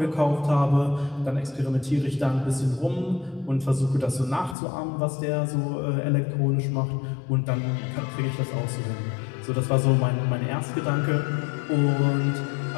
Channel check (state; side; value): drops out; right; at 4.5 s